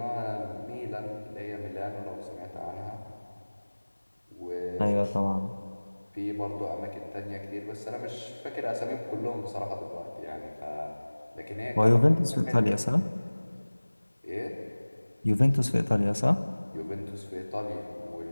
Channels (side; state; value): both; inverted; correlation -1.00